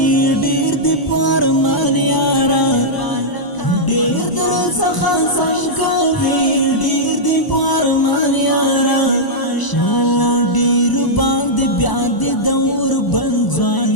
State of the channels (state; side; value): late; right; 1.0 ms